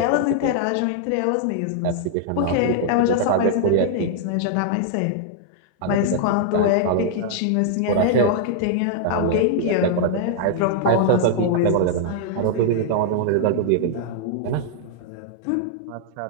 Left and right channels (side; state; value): both; different; correlation -0.01